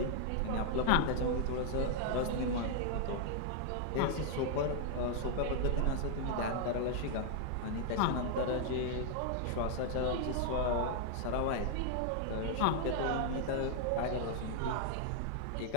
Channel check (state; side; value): different; both; correlation -0.01